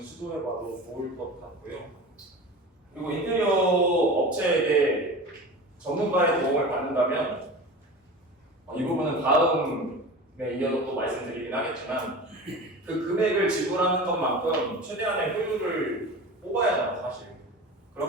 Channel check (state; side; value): normal; both; correlation 0.33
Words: 시도해봐도 좋을 것 같고요. 그리고 인테리어 업체에게 전문가의 도움을 받는다면 이 부분은 다음에 이어서 또 말씀드리긴 하겠지만 그 금액을 지불하는 것만큼 최대한의 효율을 뽑아야 하잖아요, 사실.